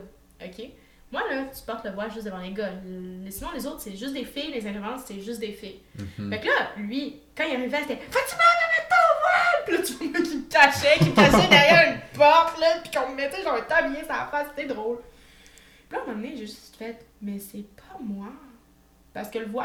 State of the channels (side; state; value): both; identical; correlation 1.00